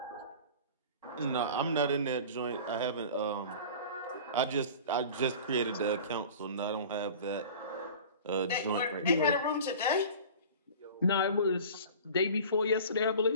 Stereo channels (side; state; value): both; inverted; correlation -0.39